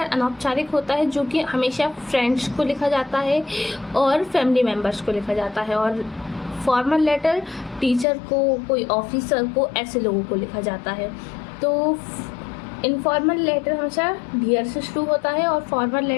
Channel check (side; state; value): right; drops out; at 8.1 s